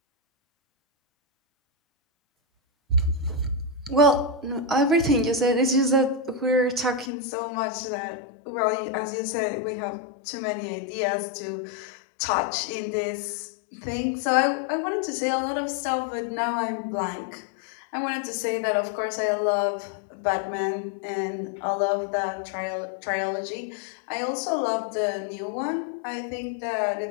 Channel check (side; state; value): right; drops out; at 7.1 s